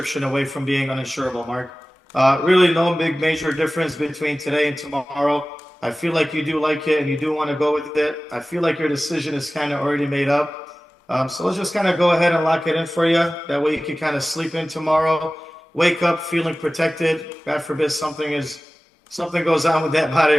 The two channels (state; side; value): normal; both; correlation 0.97